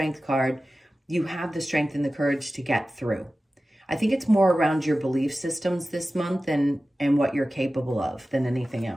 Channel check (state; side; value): normal; both; correlation 0.95